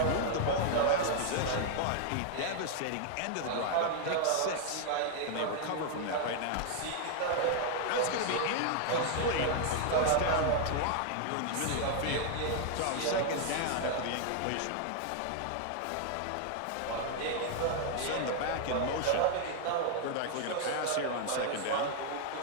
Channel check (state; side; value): different; both; correlation 0.00